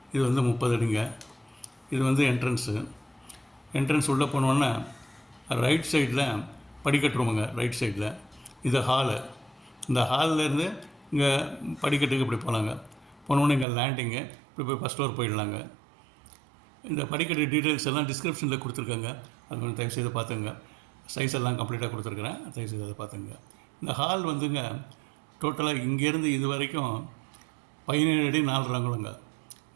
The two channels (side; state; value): left; drops out; at 13.7 s